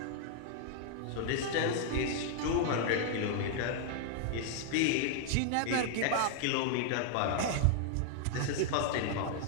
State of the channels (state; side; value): different; both; correlation 0.00